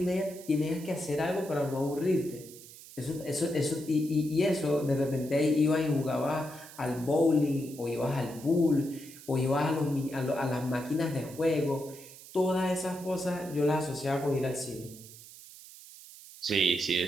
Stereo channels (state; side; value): noise; right; hiss, 18 dB below the sound